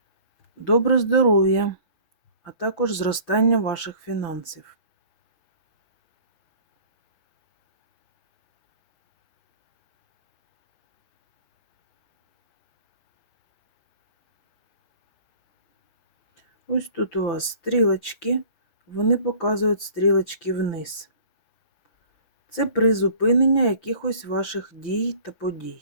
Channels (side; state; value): right; late; 6.3 ms